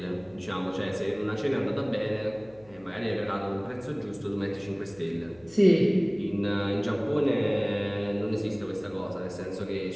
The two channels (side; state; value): left; noise; hum, 27 dB below the sound